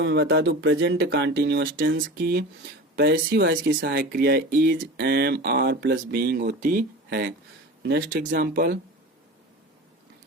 मैं बता दूं प्रेजेंट कंटीन्यूअस टेंस की पैसिव वॉइस की सहायक क्रिया is, am, are plus being होती है। नेक्स्ट एग्जांपल,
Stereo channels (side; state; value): both; normal; correlation 0.33